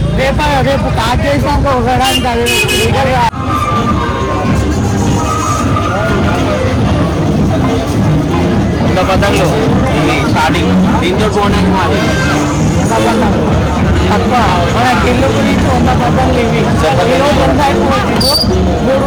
రేపు స్టార్ట్ చేసినాక ఒకడానికి అది పీకలు పతంగులు స్టార్టింగ్ దీంతో పోవడానికి మాది తక్కువ. మన గిల్లు గురించి 100 పతంగులు ఇవి. ఈరోజు 3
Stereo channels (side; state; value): both; identical; correlation 1.00